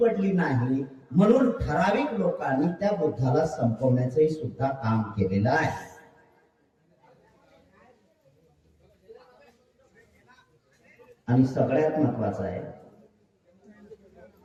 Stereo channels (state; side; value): identical; both; correlation 1.00